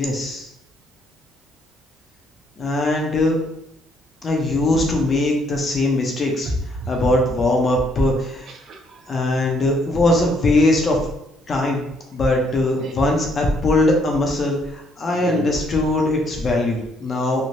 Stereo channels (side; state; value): both; normal; correlation 0.69